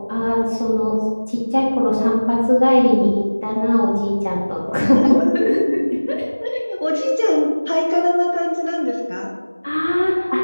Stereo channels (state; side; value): inverted; both; correlation -1.00